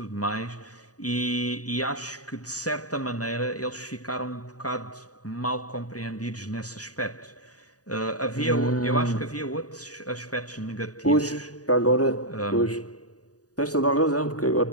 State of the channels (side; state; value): right; late; 0.67 ms